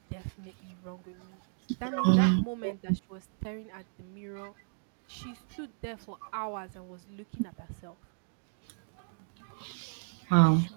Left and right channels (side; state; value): left; silent; digital silence